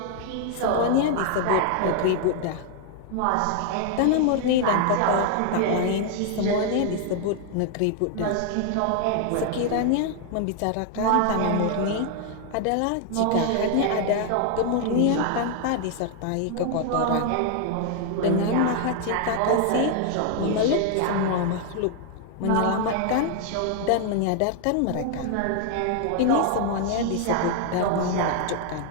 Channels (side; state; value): both; different; correlation 0.00